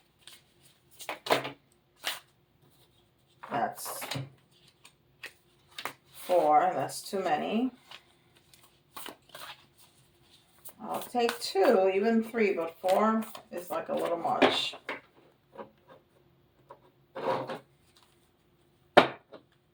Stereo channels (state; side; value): identical; both; correlation 1.00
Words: That's 4. That's too many. I'll take 2, even 3, but 4 is like a little much.